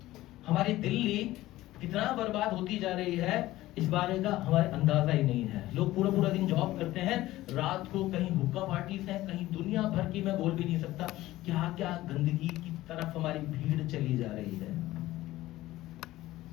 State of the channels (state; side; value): quieter; right; 16.4 dB